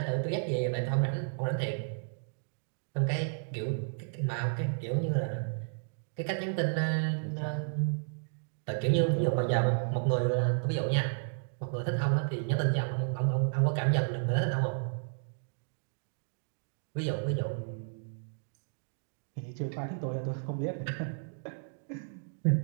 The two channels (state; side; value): silent; left; digital silence